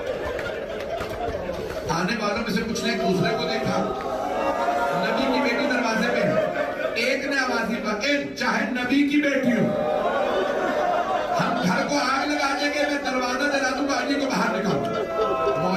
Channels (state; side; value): identical; both; correlation 1.00